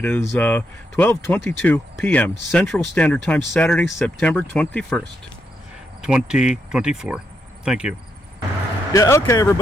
is 12:22 p.m. Central Standard Time, Saturday, September 21st, 2024. Thank you. Yeah, okay,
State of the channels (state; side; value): normal; both; correlation 0.80